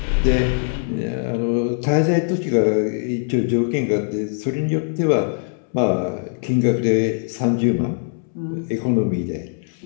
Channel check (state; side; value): silent; right; 65 dB below the other